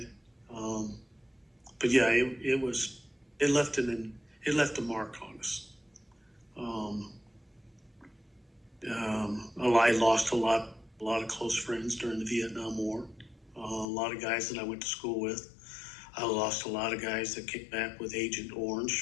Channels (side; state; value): right; drops out; at 13.9 s